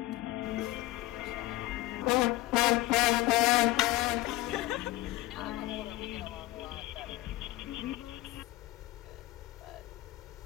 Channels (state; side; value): quieter; right; 17.6 dB